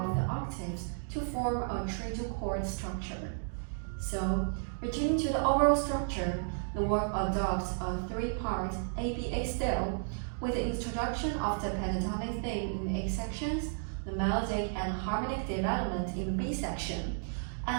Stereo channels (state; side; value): silent; left; digital silence